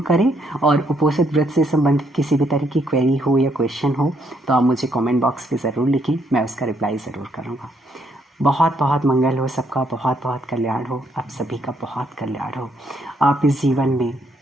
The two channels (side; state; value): both; normal; correlation 0.73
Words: करें। और उपोषण व्रत से संबंधित किसी भी तरह की क्वेरी हो या क्वेश्चन हो तो आप मुझे कमेंट बॉक्स पे ज़रूर लिखें, मैं उसका रिप्लाई ज़रूर करूँगा। बहुत बहुत मंगल हो सबका, बहुत बहुत कल्याण हो, आप सभी का बहुत कल्याण हो। आप इस जीवन में